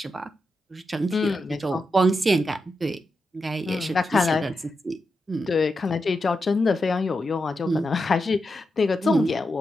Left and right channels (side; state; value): both; normal; correlation 0.87